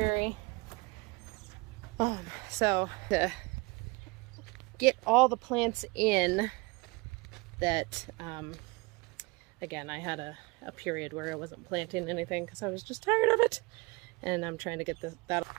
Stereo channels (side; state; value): left; quieter; 25.9 dB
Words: So to get all the plants in that, again, I had a period where I wasn't planting anything because I was just tired of it, and I'm trying to get that.